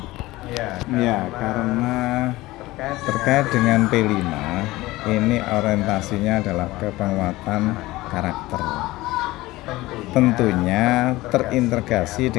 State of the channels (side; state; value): right; quieter; 18.8 dB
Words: Ya, karena terkait dengan P5 ini orientasinya adalah ke penguatan karakter. Tentunya terintegrasi